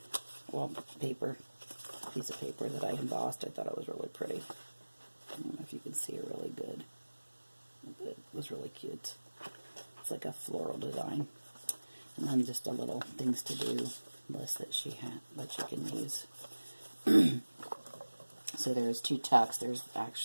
Well, piece of paper that I embossed. I thought it was really pretty. I don't know if you can see it really good. But it was really cute. It's like a floral design. And then just a little things to do list that she had that you can use. So there's two tucks. There's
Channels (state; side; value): inverted; both; correlation -1.00